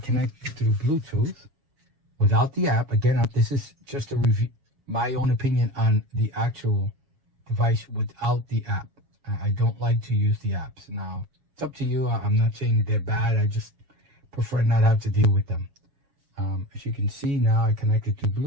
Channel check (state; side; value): late; left; 7.3 ms